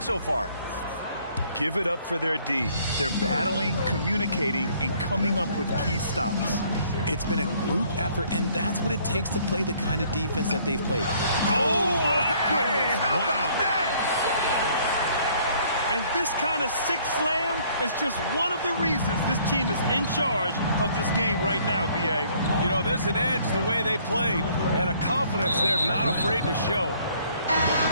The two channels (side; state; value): both; inverted; correlation -0.61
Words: so far? Give it up for their D. They're battling, communicating, and coming up with key stops. It's been a group effort, and that's what it takes to play the kind of defense that they've played. Oh, my goodness. How about that? And this kind of six slam is just one of the reasons this team is in charge of this game right now, B.A. You know, there's an edge the way they played and a confidence they're not afraid to show.